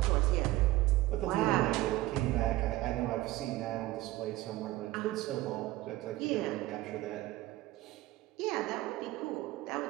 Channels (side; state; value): left; quieter; 17.2 dB